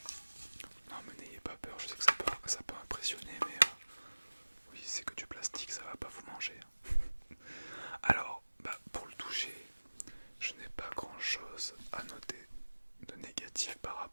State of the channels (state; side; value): inverted; both; correlation -1.00